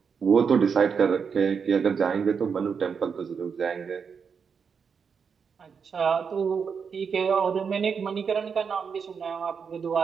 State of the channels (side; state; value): left; quieter; 6.2 dB